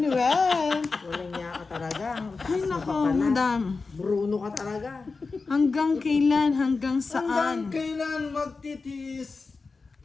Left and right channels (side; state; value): right; quieter; 4.2 dB